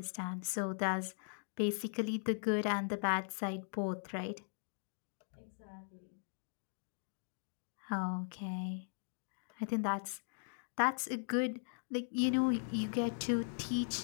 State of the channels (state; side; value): silent; right; digital silence